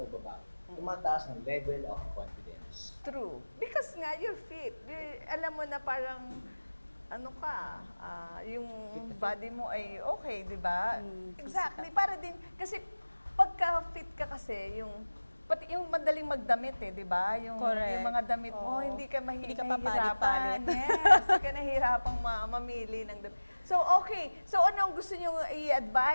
babae, tumataas ng level of confidence. true. Because nga, you're fit. Alam mo na parang, yung body mo ay okay, di ba? Exactly. Para din, kasi pagka fit ka kasi, pati yung madaling magdamit di ba? Yung mga damit mo, Oo. hindi ka Hindi ka mahirapan. papalit-palit. Yes, hindi ka nahihirapang mamili ng damit. So, okay. So, ano ang gusto niyo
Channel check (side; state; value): both; inverted; correlation -1.00